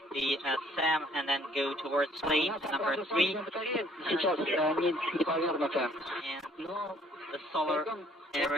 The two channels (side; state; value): both; normal; correlation 0.60